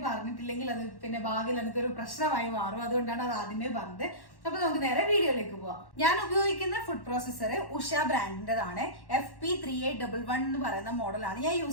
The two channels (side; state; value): right; late; 1.1 ms